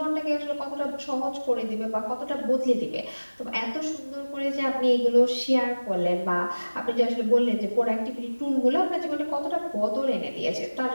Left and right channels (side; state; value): both; inverted; correlation -1.00